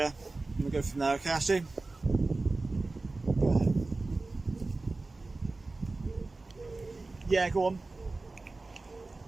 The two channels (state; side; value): quieter; left; 3.4 dB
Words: and we'll go from there, okay, Ashley? Go ahead. Yeah, go on.